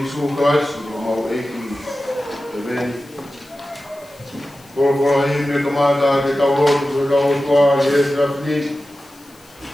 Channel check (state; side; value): noise; left; hiss, 27 dB below the sound